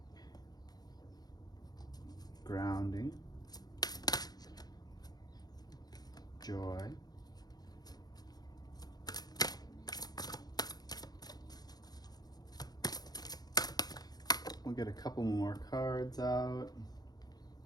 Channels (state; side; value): late; right; 0.19 ms